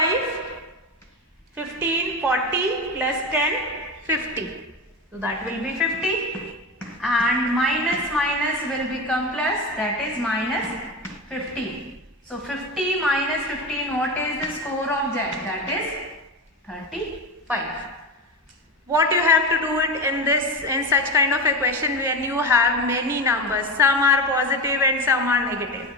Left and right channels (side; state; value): both; normal; correlation 0.21